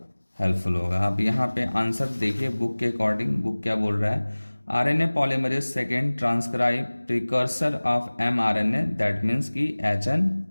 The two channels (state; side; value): inverted; both; correlation -1.00